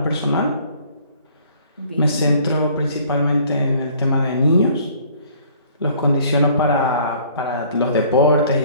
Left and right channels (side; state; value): both; inverted; correlation -0.56